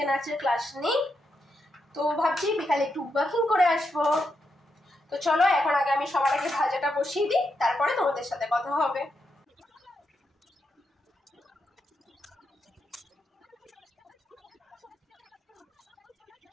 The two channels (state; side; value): normal; both; correlation 0.83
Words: নাচের ক্লাস নেই, তো ভাবছি বিকালে একটু ওয়াকিং করে আসবো। তো চলো এখন আগে আমি সবার আগে ভাজাটা বসিয়ে দিই, তারপরে তোমাদের সাথে কথা হবে।